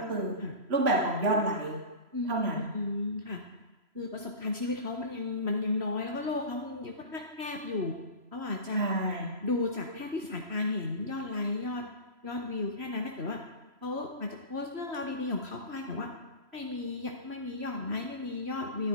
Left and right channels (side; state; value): left; late; 3.0 ms